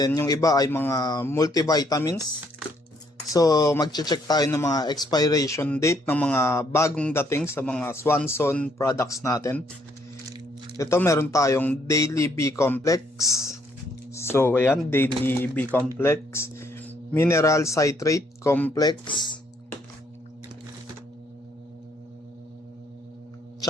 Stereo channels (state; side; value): normal; both; correlation 0.69